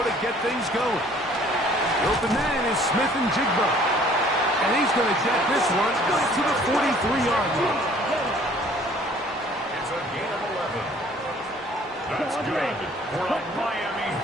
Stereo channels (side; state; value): both; normal; correlation 0.55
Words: to get things going. The open man is Smith and Jigba. And he's going to jet this one to the 43-yard line. It's a gain of 11. That's good for a Miami